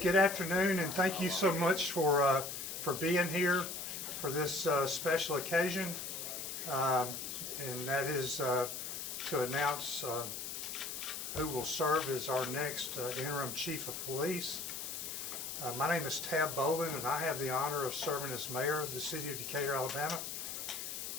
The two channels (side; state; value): left; noise; hiss, 6 dB below the sound